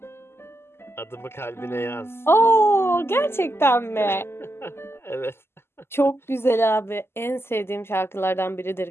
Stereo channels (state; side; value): late; right; 0.12 ms